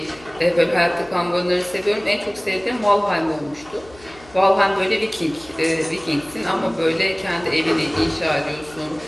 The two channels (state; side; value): noise; left; hum, 24 dB below the sound